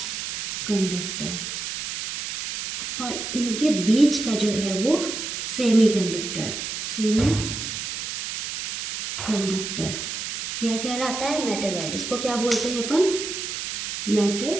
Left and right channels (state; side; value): noise; right; hiss, 5 dB below the sound